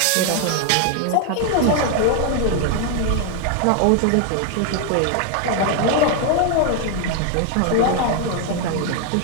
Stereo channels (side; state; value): both; different; correlation 0.00